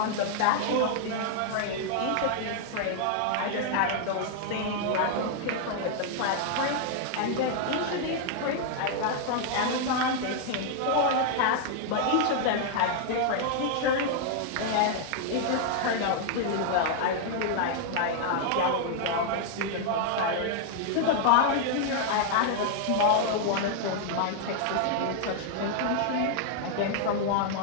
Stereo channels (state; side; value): different; both; correlation 0.00